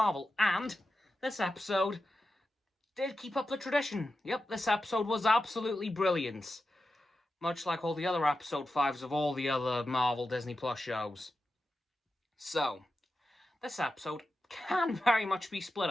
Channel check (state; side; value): normal; both; correlation 0.91